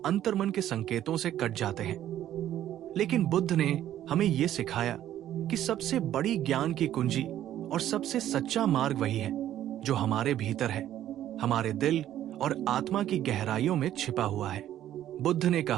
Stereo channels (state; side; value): quieter; left; 12.0 dB